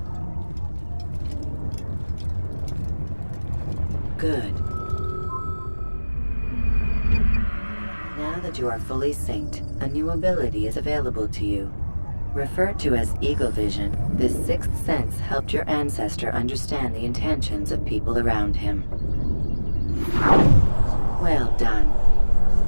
Good. Now that you are fully synced, a new ability is available to you. Referred to as Eagle Vision, this sixth sense helped your ancestor understand the intentions of people around him. Well done.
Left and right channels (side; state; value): both; inverted; correlation -1.00